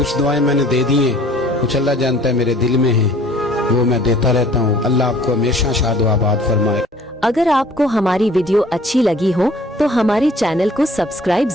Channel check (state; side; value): normal; both; correlation 0.53